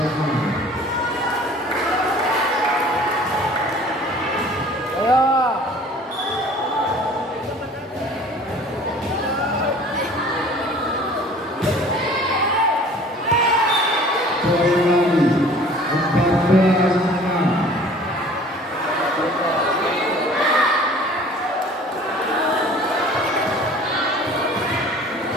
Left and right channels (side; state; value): both; normal; correlation 0.48